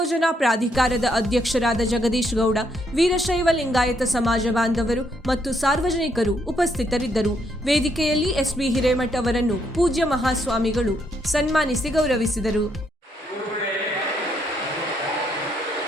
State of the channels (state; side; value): normal; both; correlation 0.74